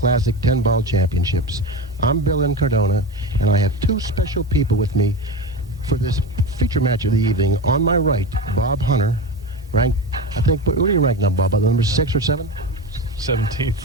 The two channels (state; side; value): normal; both; correlation 0.23